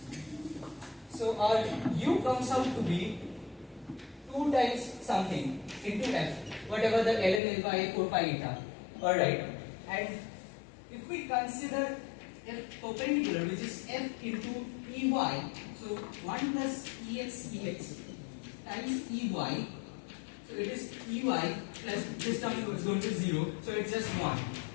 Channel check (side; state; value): right; drops out; at 7.4 s